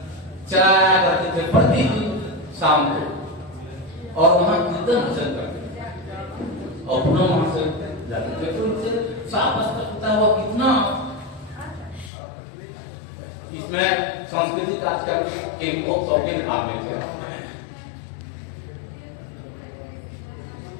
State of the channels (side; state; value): right; drops out; at 12.1 s